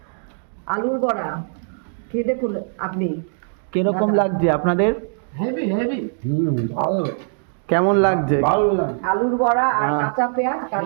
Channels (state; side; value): silent; left; digital silence